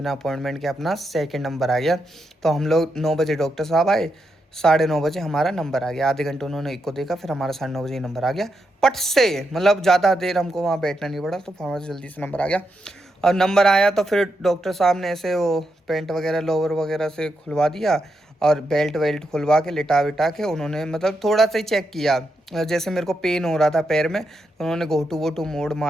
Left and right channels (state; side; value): normal; both; correlation 0.83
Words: अपॉइंटमेंट के अपना सेकंड नंबर आ गया। तो हम लोग 9 बजे डॉक्टर साहब आए, 9:30 बजे हमारा नंबर आ गया। आधे घंटे उन्होंने एक को देखा, फिर हमारा 9:30 बजे नंबर आ गया पट से, मतलब ज़्यादा देर हमको वहाँ बैठना नहीं पड़ा, तो हमारा जल्दी से नंबर आ गया। और नंबर आया तो फिर डॉक्टर साहब ने ऐसे वो पेंट वगैरह लोअर वगैरह से खुलवा दिया और बेल्ट वेल्ट खुलवा के लिटा विटा के उन्होंने मतलब थोड़ा सा ही चेक किया। जैसे मेरे को पेन हो रहा था पैर में, तो उन्होंने घोटू वोटू मोड़